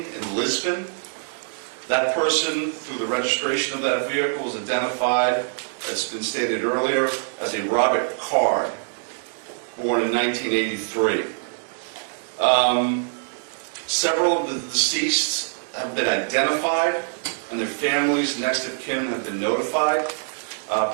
in Lisbon. That person, through the registration of that vehicle, was identified, as been stated earlier, as a Robert Card, born in 1983. Several of the deceased have been identified, and their families, next of kin, have been notified.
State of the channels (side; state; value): left; silent; digital silence